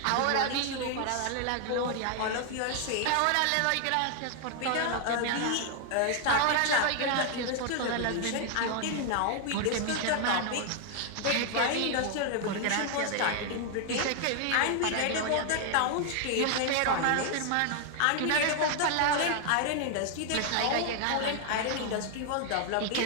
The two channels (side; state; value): both; different; correlation 0.00